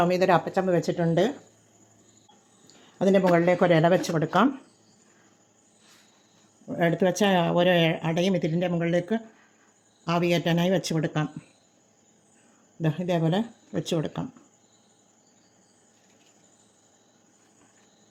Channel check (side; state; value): both; identical; correlation 1.00